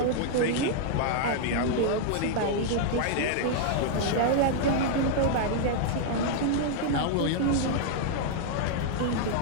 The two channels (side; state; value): both; different; correlation 0.00